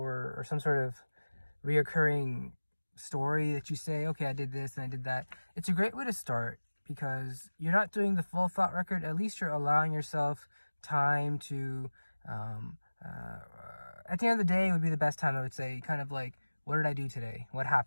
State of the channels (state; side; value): inverted; both; correlation -1.00